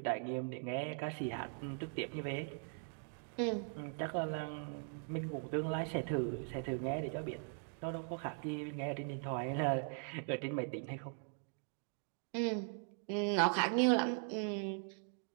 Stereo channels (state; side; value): silent; left; 51 dB below the other